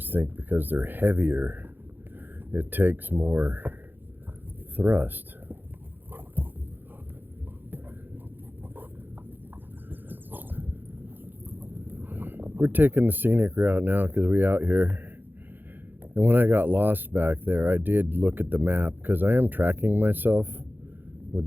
think because they're heavier, it takes more thrust. We're taking the scenic route now because we out here. And when I got lost back there, I did look at the map because I am tracking myself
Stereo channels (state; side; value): late; left; 0.093 ms